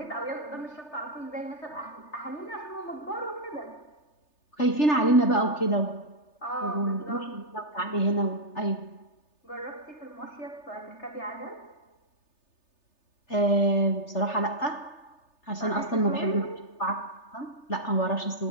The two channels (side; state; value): right; late; 3.3 ms